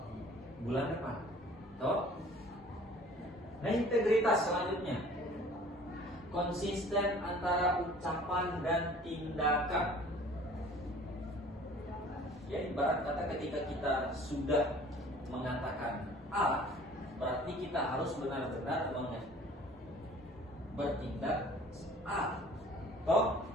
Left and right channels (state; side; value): normal; both; correlation 0.50